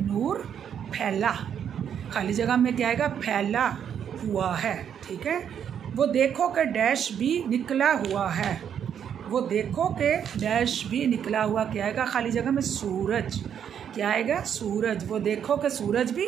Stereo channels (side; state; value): left; quieter; 8.6 dB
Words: फैला। खाली जगह में क्या आएगा? फैला हुआ है, ठीक है। वो देखो कि डैश भी निकला हुआ है, वो देखो कि डैश भी निकला हुआ। क्या आएगा? खाली जगह में सूरज। क्या आएगा? सूरज। वो देखो कि सूरज भी